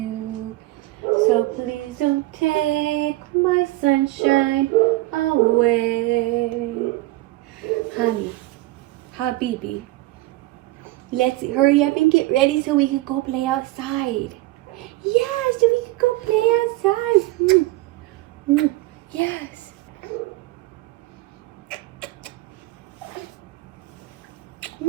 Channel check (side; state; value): left; quieter; 18.9 dB